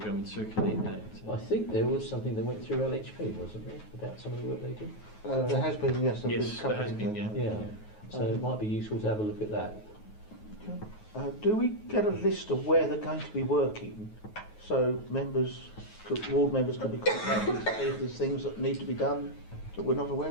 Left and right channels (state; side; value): late; right; 9.3 ms